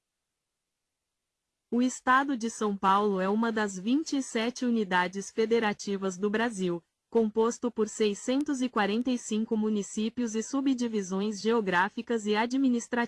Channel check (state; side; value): identical; both; correlation 1.00